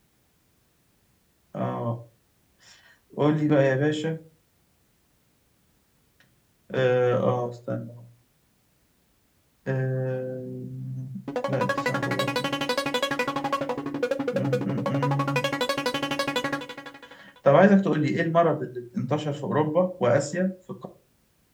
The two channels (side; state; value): both; identical; correlation 1.00